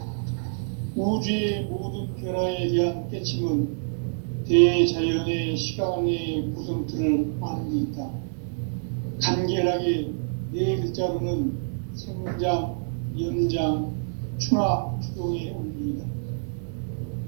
우주의 모든 변화에 대한 깨침은 대자연의 시간의 구성틀을 아는 데 있다. 간결하게 네 글자로는 생장, 연장, 추나 추동의 원리이다.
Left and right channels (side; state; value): left; silent; digital silence